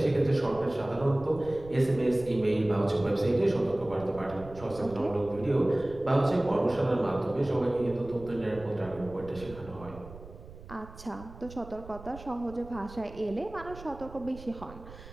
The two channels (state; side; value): noise; right; rumble, 16 dB below the sound